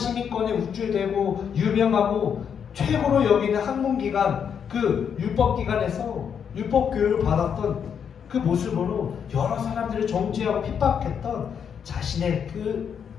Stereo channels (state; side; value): quieter; right; 7.6 dB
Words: 우쭐대고 유명하고 최고로 여기는 학문기관, 그 율법기관에서 율법교육을 받았던 그 모습으로 여러 사람들을 정죄하고 핍박했던 자신의 그